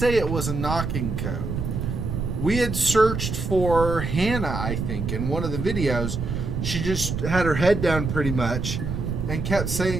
it was a knocking code. We had searched for Hannah, I think, in one of the videos. She just had her head down pretty much and kept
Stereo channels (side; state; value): right; noise; rumble, 3 dB below the sound